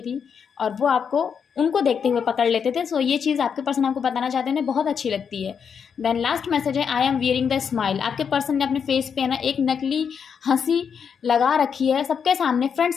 थी और वो आपको उनको देखते हुए पकड़ लेते थे। सो ये चीज़ आपके पर्सन आपको बताना चाहते हैं उन्हें बहुत अच्छी लगती है। देन लास्ट मैसेज है, I am wearing the smile. आपके पर्सन ने अपने फेस पे है ना एक नकली हंसी लगा रखी है सबके सामने,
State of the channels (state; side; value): quieter; right; 6.9 dB